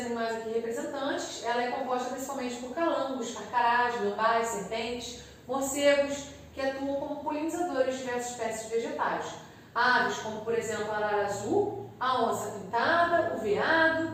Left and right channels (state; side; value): identical; both; correlation 1.00